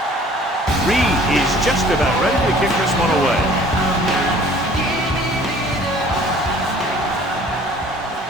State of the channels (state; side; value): normal; both; correlation 0.52